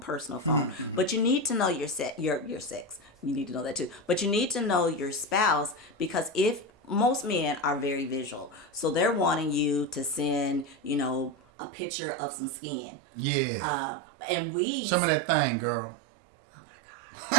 phone. But you need to know your sex. You need to know that too. But you need to know your spouse, because if most men are very visual, so they're wanting you to send, a picture of some skin. Yeah. And show me that thing, girl. Oh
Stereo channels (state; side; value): drops out; left; at 11.4 s